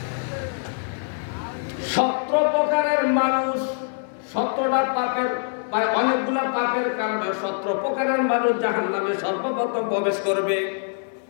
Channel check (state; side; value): silent; right; 63 dB below the other